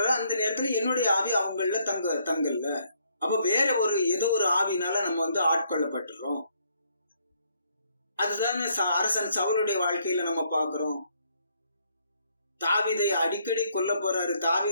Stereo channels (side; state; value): both; inverted; correlation -0.69